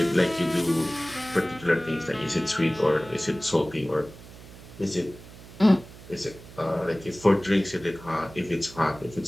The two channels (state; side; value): noise; right; hum, 18 dB below the sound